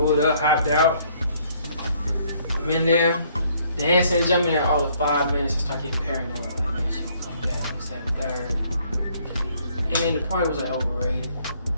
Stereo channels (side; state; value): both; inverted; correlation -0.64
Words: up, hopped out. I'm in there, dancing, jumping in all of 5 minutes. I start getting paranoid. Like, man, she gonna come back. This, that, and third. And then the party was like overrated.